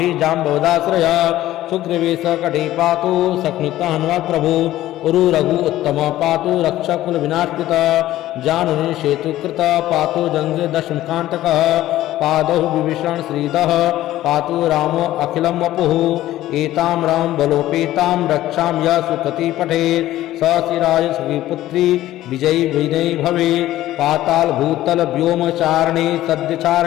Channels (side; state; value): right; quieter; 14.6 dB